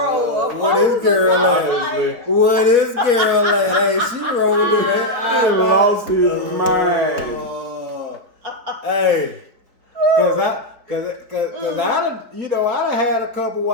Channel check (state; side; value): late; left; 4.1 ms